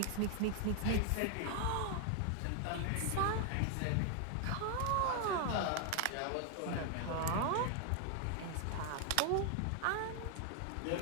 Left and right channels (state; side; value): different; both; correlation 0.00